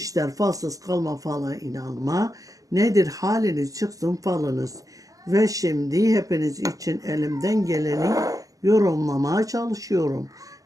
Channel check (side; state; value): left; late; 0.17 ms